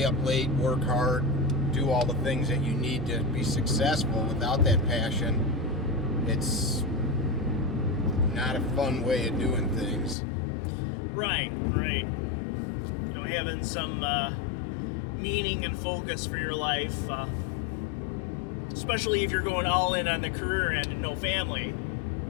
up late, work hard, do all the things that you need to be successful, without that passion, it's not a fun way of doing things. Right. Having some meaning and focus for your life, especially if you're going all in on the career end and no family,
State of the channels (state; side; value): drops out; right; at 10.2 s